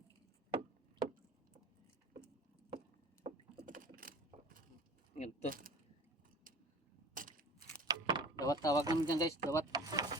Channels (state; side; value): normal; both; correlation 0.41